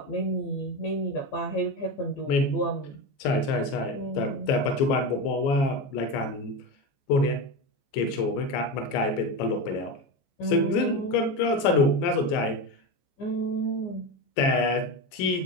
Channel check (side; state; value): right; late; 14 ms